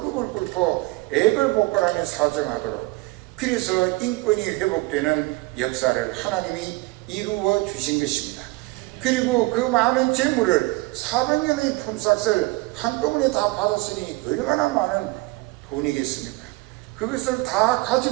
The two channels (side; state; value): left; quieter; 22.4 dB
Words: 꿇고 액을 복걸하며 사정하도록, 그래서 인권이 회복되는 역사를 하나님이 이루어 주신 것입니다. 그리고 그 많은 재물을 400년의 품삯을 한꺼번에 다 받았으니 얼마나 많은 돈이겠습니까? 그것을 다